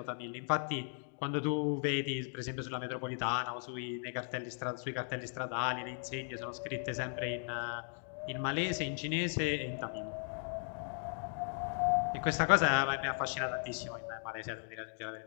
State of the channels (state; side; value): silent; right; 53 dB below the other